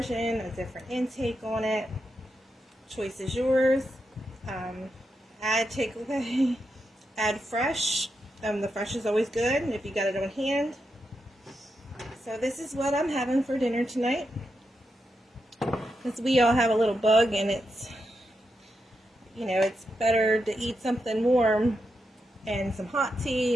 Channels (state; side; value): normal; both; correlation 0.86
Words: a different intake on it. Choice is yours. Add takeaway, add fresh. The fresh is always good if you got it on hand. So this is what I'm having for dinner tonight. Because we all have a little bug, and it's, you know, it's better to eat something warm and some hot tea